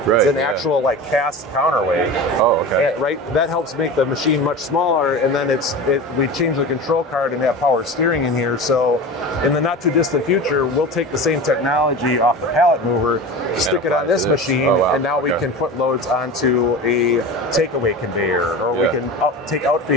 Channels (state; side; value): normal; both; correlation 0.30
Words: Right, it's an actual like cast counterweight. Oh, okay. And, right. That helps make the machine much smaller, and then we change the control card and have power steering in here. So in the not too distant future, we'll take the same technology off the pallet mover, stick it on this machine, and now we can put loads onto a takeaway conveyor, or we can take